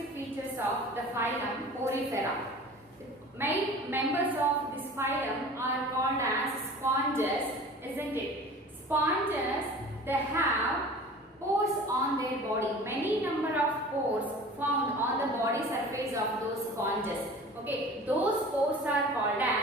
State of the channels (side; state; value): both; normal; correlation 0.41